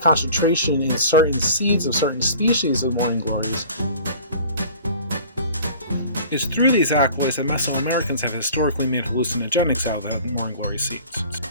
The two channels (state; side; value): inverted; both; correlation -0.45